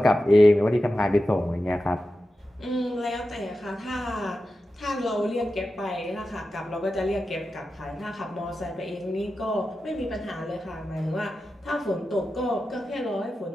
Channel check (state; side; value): normal; both; correlation 0.92